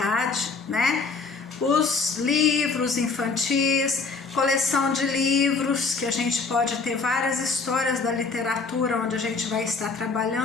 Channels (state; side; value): quieter; right; 4.4 dB